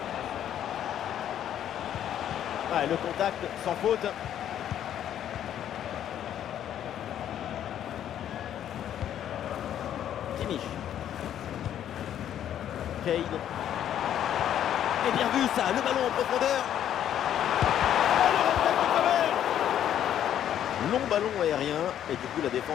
Ah, le contact sans faute. Kimmich. Kane. Et bien vu ça, le ballon en profondeur. Long ballon aérien et du coup la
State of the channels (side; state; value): right; quieter; 10.5 dB